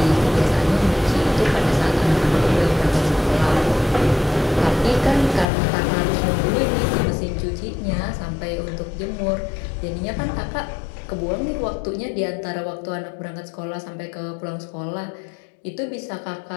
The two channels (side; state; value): right; drops out; at 5.5 s